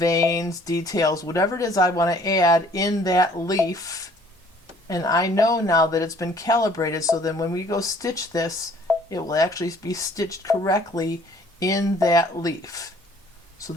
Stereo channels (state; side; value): normal; both; correlation 0.57